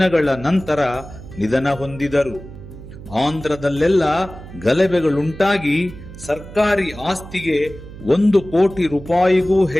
ನಂತರ ನಿಧನ ಹೊಂದಿದರು. ಆಂಧ್ರದಲ್ಲೆಲ್ಲ ಗಲಭೆಗಳುಂಟಾಗಿ ಸರ್ಕಾರಿ ಆಸ್ತಿಗೆ 1 ಕೋಟಿ ರೂಪಾಯಿಗೂ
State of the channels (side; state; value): right; noise; hum, 15 dB below the sound